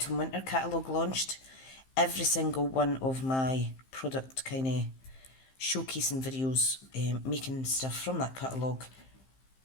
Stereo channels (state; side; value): late; right; 15 ms